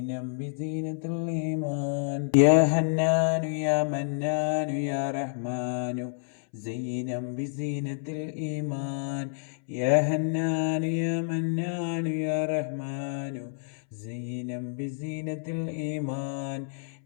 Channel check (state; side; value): silent; right; 59 dB below the other